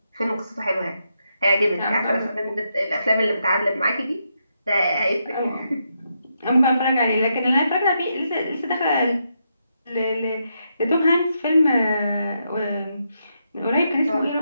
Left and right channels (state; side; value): inverted; both; correlation -0.81